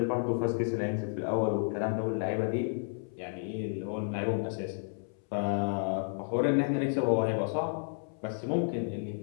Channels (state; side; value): silent; right; 57 dB below the other